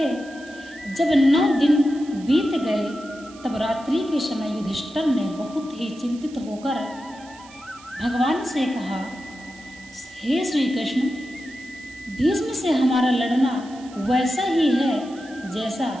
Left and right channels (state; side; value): noise; right; hiss, 22 dB below the sound